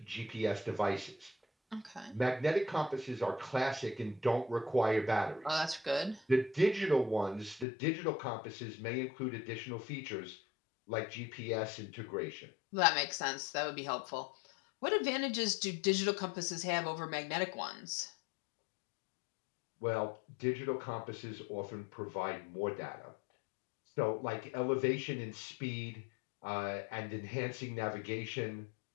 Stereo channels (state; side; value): drops out; right; at 7.7 s